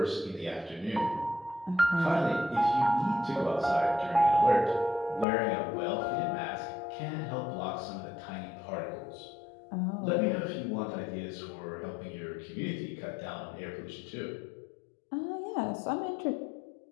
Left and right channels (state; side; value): drops out; right; at 5.2 s